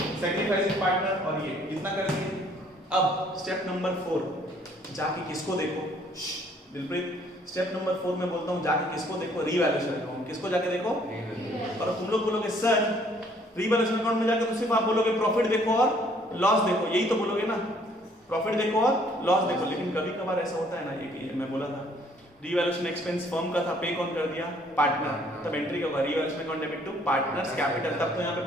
सैक्रिफाइसिंग पार्टनर, और ये इतना कर दिए। अब स्टेप नंबर 4 जाके किसको देखो? दिलप्रीत, स्टेप नंबर 4 में बोलता हूं जाके किसको देखो? Revaluation account. किसको जाके देखो? और तुम लोग बोलोगे सर रीवैल्यूएशन अकाउंट में जाकर तो सिर्फ आप बोलोगे प्रॉफिट देखो और लॉस देखो, यही तो बोलोगे ना, प्रॉफिट देखो और लॉस देखो। लेकिन कभी कभार ऐसा होता है ना, ये कि मैं बोला था रीवैल्यूएशन एक्सपेंस फर्म का था, पे कौन कर दिया? पार्टनर। तब एंट्री क्या होगा? Revaluation account debit to partners capital. तब तो यहाँ पे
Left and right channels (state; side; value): normal; both; correlation 0.62